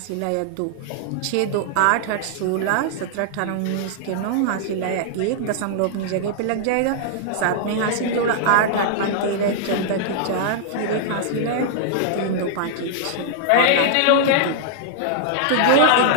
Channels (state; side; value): different; both; correlation -0.01